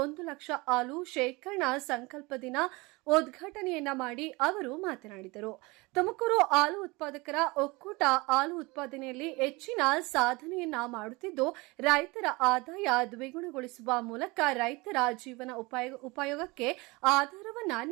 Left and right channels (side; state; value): left; quieter; 24.6 dB